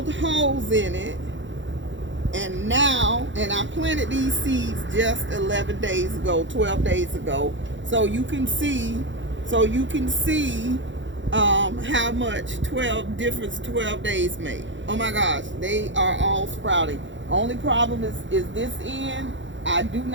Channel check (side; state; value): left; late; 0.54 ms